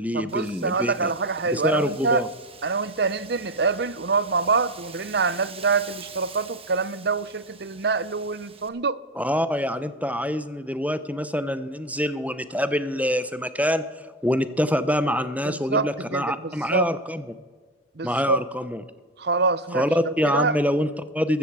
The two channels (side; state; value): both; normal; correlation 0.21